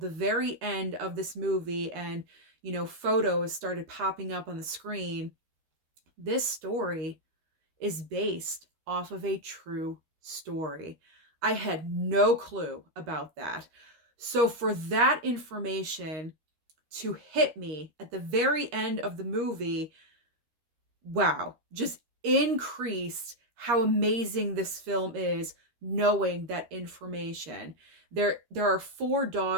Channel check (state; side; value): late; left; 13 ms